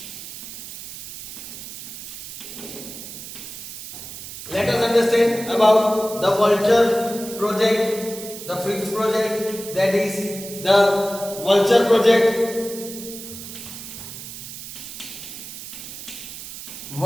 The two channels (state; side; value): noise; right; hiss, 11 dB below the sound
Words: let us understand about the vulture project, the fifth project, that is the vulture project.